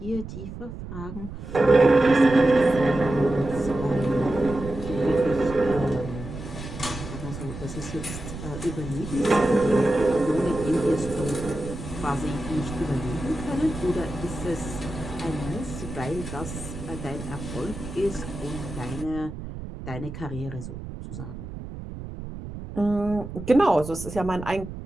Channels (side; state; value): right; noise; rumble, 10 dB below the sound